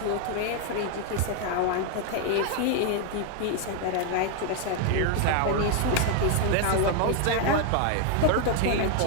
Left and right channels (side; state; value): both; different; correlation 0.00